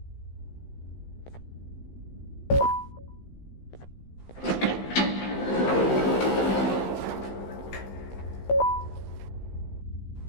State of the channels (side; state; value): right; late; 15 ms